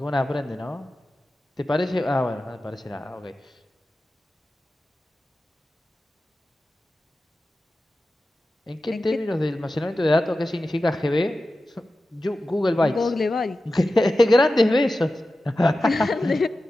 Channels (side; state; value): both; normal; correlation 0.94